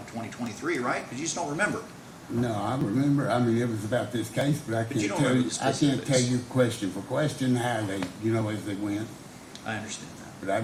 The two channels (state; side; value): identical; both; correlation 1.00